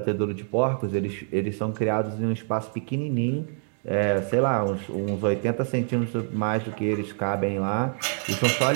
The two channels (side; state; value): left; silent; 61 dB below the other